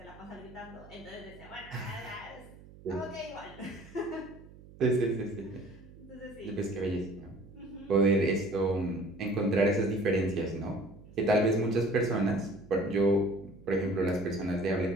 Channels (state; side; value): noise; right; hum, 20 dB below the sound